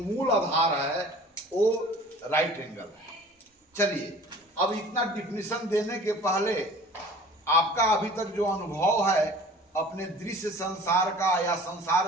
आधार है वो राइट एंगल है। चलिए अब इतना डिफिनेशन देने के पहले आपका अभी तक जो अनुभव है अपने दृश्य संसार का या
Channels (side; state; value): both; normal; correlation 0.45